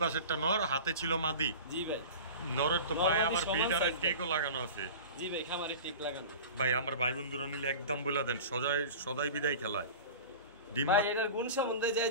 পাশেরটা নর, হাতে ছিল মাদি। জি ভাই, নরের তো পায়ে আবার বিডারের টেকও লাগানো আছে। জি ভাই, খামারে টেক লাগানো। ভাই আমার ভাই বন্ধুরা নিলে একদম বলে দেন, সদাই বিদায় খেলায়। ভাই এটার গুণ সম্বন্ধে যাই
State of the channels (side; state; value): both; inverted; correlation -0.35